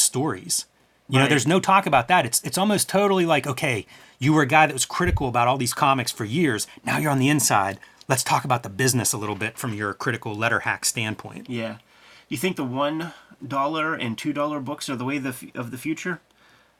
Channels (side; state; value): both; identical; correlation 1.00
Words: There's no talk about that. It's almost totally like, okay, you were a guy that was critical about all these comics for years. Now you're on the inside. Let's talk about the business a little bit from your critical letter hack standpoint. Yeah. You think the $1 and $2 books are the way of the future?